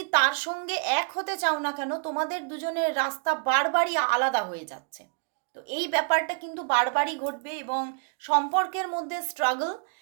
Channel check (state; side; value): quieter; left; 37.8 dB